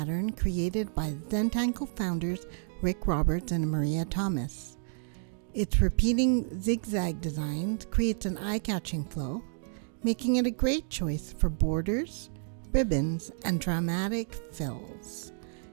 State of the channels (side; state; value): left; silent; digital silence